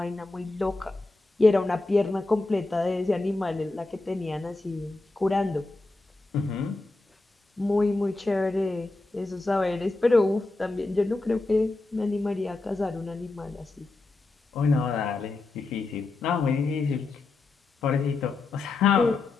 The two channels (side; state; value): right; quieter; 3.2 dB